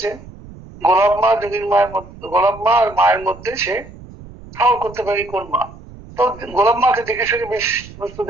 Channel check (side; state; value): right; noise; rumble, 18 dB below the sound